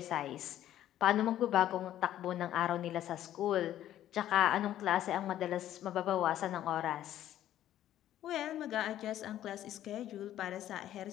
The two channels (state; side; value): quieter; right; 12.3 dB